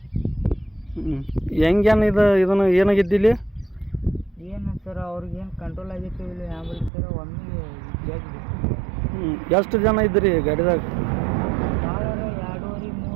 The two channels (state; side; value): drops out; left; at 6.9 s